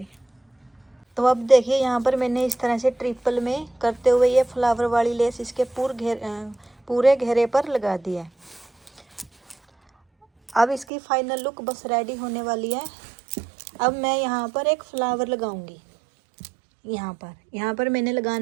तो अब देखिए यहाँ पर मैंने इस तरह से ट्रिपल में करते हुए ये फ्लावर वाली लेस इसके पूरे घेरे पर लगा दिया है। अब इसकी फाइनल लुक बस रेडी होने वाली है। अब मैं यहाँ पर एक फ्लावर लगाऊंगी। यहाँ पर मैंने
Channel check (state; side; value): drops out; left; at 10.9 s